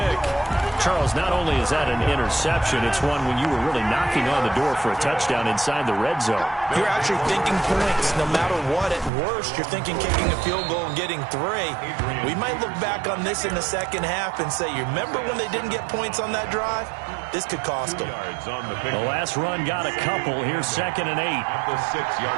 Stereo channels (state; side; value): drops out; left; at 9.1 s